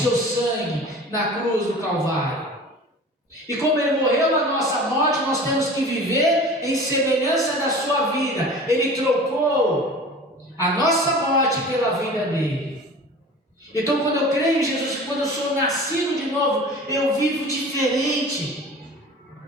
sangue na cruz do Calvário. E como Ele morreu na nossa morte, nós temos que viver em semelhança da sua vida. Ele trocou a nossa morte pela vida dele. Então, quando eu creio em Jesus, quando eu sou nascido de novo, eu vivo diferente.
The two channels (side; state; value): both; normal; correlation 0.40